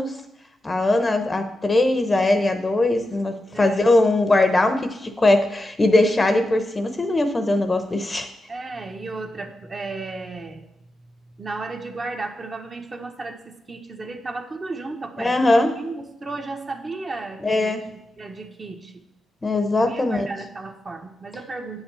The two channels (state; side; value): normal; both; correlation 0.90